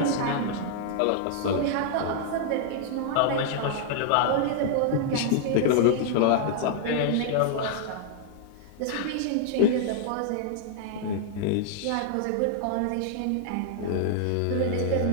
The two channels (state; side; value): different; both; correlation -0.01